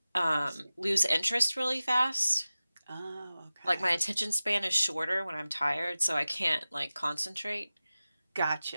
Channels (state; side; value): inverted; both; correlation -0.96